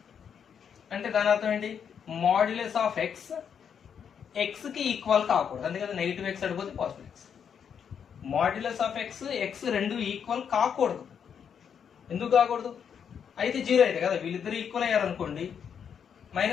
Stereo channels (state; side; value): quieter; right; 7.6 dB